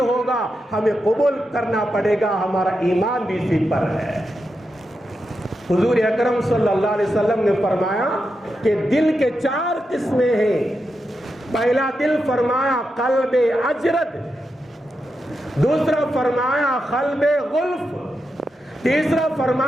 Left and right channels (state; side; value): normal; both; correlation 0.87